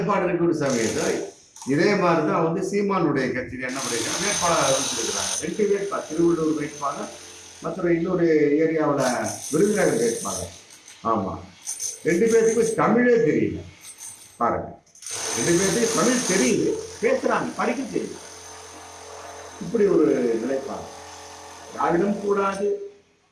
இருக்கிற சமயத்தை இதே மாதிரிதான் வந்து சீமானுடைய கட்சியில் என்ன பண்ணிருக்காங்க, வேட்பாளர் அறிவிச்சிருக்கிறாங்க. 2 வேட்பாளர், திருவள்ளூர் வேட்பாளர், மற்ற இன்னொரு ஏரியாவில் விருதுநகர் வேட்பாளர். ஆமா, 2 பேருக்கும் தமிழே தெரியல. பாருங்க, 2 பேருக்கு தமிழ் தெரியுது, பேசுறாங்க, படிக்க தெரியுது. இப்படி ஒரு நிலைப்பாடு. திராவிடம் கூடாது,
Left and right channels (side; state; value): both; identical; correlation 1.00